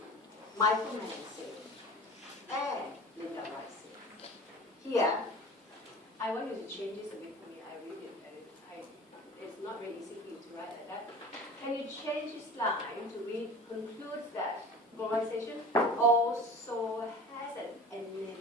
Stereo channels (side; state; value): both; normal; correlation 0.39